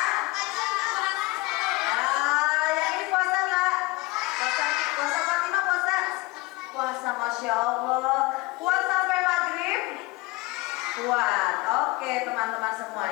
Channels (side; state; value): right; quieter; 22.9 dB